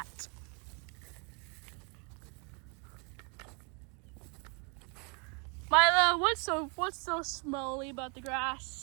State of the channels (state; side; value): quieter; left; 35.3 dB